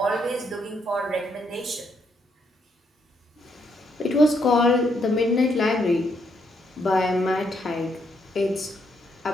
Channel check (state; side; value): normal; both; correlation 0.75